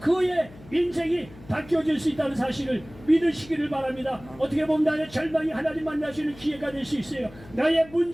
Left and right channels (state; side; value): noise; left; hum, 21 dB below the sound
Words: 그의 인생이 바뀌어질 수 있다는 사실을 믿으시기를 바랍니다. 어떻게 보면 나의 절망이 하나님 만날 수 있는 기회가 될 수 있어요. 나의